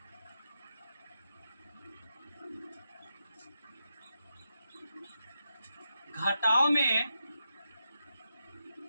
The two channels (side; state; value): both; inverted; correlation -0.86